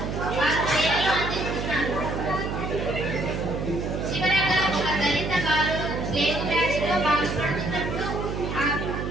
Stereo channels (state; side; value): noise; right; hum, 4 dB below the sound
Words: వారు సేవలు అందిస్తున్నారు. చివరగా ఒక దళిత బాలుడు ప్లేగు వ్యాధిలో బాధపడుతున్నప్పుడు ఆ